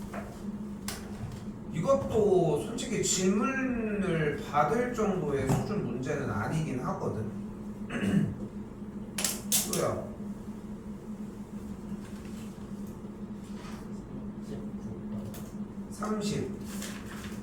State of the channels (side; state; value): both; identical; correlation 1.00